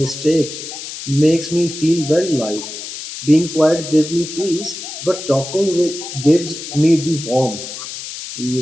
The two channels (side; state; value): left; noise; hiss, 9 dB below the sound